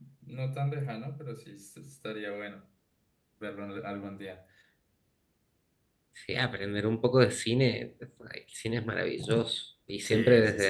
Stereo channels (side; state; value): both; identical; correlation 1.00